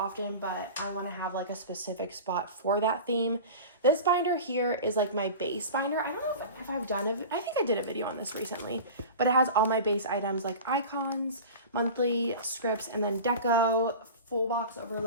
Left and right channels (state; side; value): inverted; both; correlation -0.33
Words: but I want to have like a specific spot for that theme. This binder here is like my base binder. I don't know if I've done I think I did a video on this recently, but it has all my base items like icons, monthly scripts, and then deco, full box